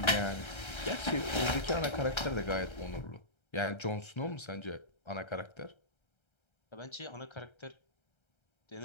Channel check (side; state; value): right; late; 1.3 ms